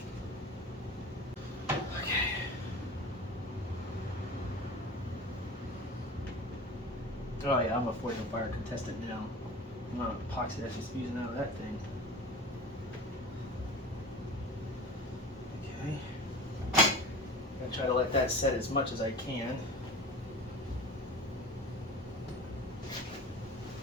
Okay. Oh yeah, I'm a Forge and Fire contestant now. I'm not epoxy that's just using out of that thing. Okay. I'm gonna try to let that set as much as I can.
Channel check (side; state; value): both; normal; correlation 0.36